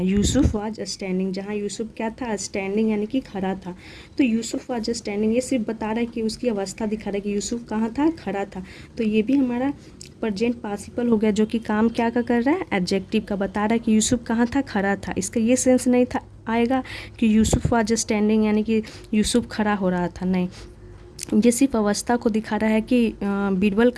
यूसुफ वाज स्टैंडिंग जहाँ यूसुफ क्या था, स्टैंडिंग यानी कि खड़ा था। तो यूसुफ वाज स्टैंडिंग ये सिर्फ बता रहा है कि उसकी अवस्था दिखा रहा है कि यूसुफ कहाँ था, खड़ा था। तो ये भी हमारा प्रेजेंट पार्टिसिपल हो गया जो कि काम क्या का कर रहा है, एडजेक्टिव का, बता रहा है कि यूसुफ कहाँ था, खड़ा था। इसका ये सेंस नहीं था आएगा कि यूसुफ वाज स्टैंडिंग यानी कि यूसुफ खड़ा हो रहा था, नहीं, ये सिर्फ अवस्था को दिखा रहा है कि बीरबल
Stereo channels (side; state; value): both; identical; correlation 1.00